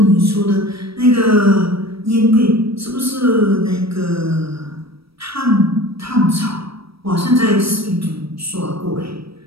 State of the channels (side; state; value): left; late; 0.76 ms